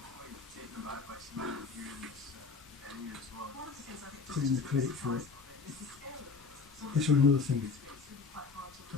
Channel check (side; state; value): right; quieter; 4.8 dB